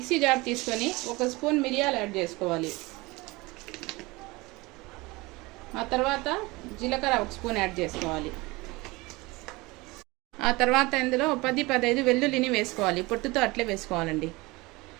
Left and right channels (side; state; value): left; quieter; 23.0 dB